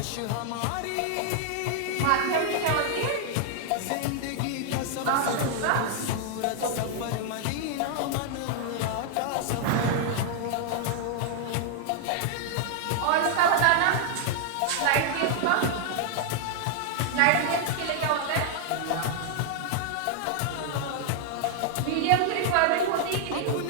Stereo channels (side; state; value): both; different; correlation 0.00